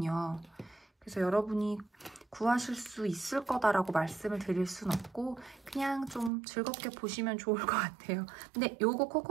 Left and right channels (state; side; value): drops out; left; at 6.3 s